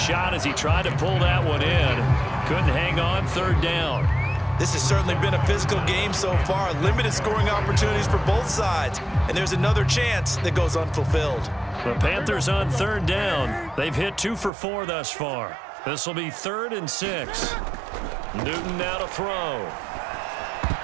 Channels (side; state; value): left; drops out; at 14.5 s